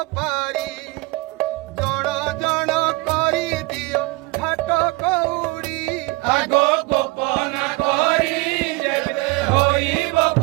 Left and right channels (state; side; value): quieter; left; 24.1 dB